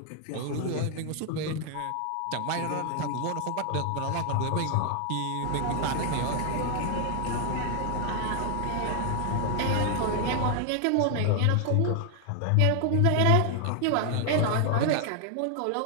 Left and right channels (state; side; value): different; both; correlation 0.00